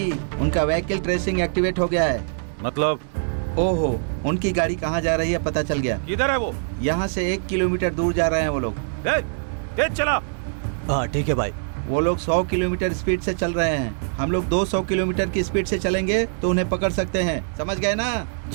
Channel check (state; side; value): silent; left; 63 dB below the other